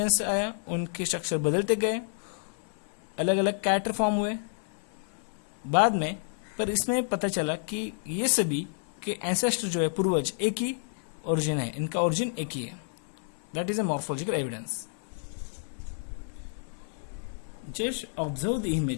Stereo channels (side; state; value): right; silent; 58 dB below the other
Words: आया, उनके स्ट्रक्चर बदलते गए, अलग अलग कैरेक्टर फॉर्म हुए बाद में. पर इसमें पता चला कि ये सभी के एंसेस्टर जो है पूर्वज एक ही ओरिजिन है, इनका ओरिजिन एक ही है. That is a morphological evidence. Just observe the